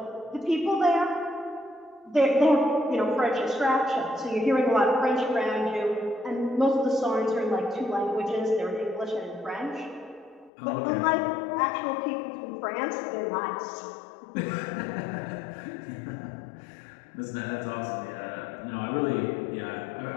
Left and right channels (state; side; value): drops out; right; at 10.5 s